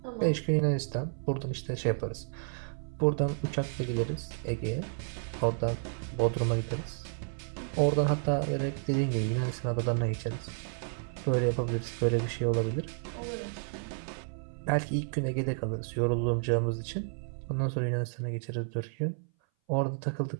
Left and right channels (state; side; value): silent; left; 57 dB below the other